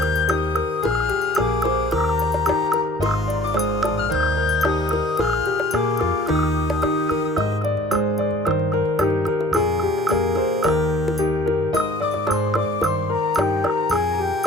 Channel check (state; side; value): normal; both; correlation 0.52